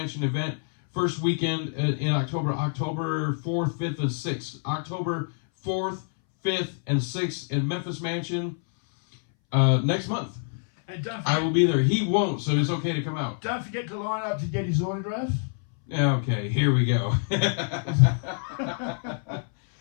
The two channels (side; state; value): right; silent; 61 dB below the other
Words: event. First weekend in October 4th, 5th, and 6th. October 4th, 5th, and 6th in Memphis Mansion next month. And I will be there. He won't, so it's okay to come out. Don't forget to line up to get his autograph. Okay, here we go.